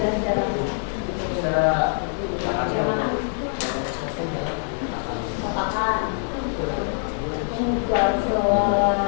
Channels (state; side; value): silent; right; 61 dB below the other